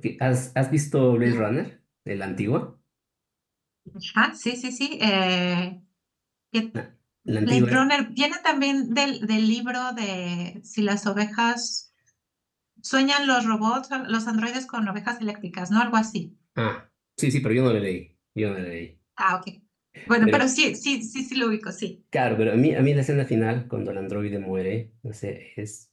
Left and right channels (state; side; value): identical; both; correlation 1.00